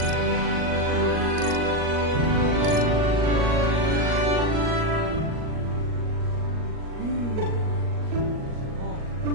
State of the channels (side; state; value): left; late; 38 ms